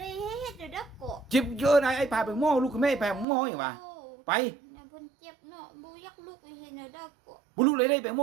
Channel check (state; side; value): drops out; left; at 3.2 s